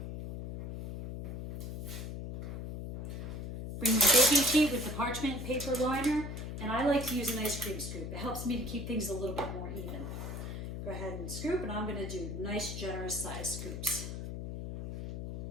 Bring my baking sheet with the parchment paper liner, and I like to use an ice cream scoop. It helps me to keep things a little bit more even. Go ahead and scoop, and I'm going to do nice, generous size scoops.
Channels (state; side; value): noise; left; hum, 6 dB below the sound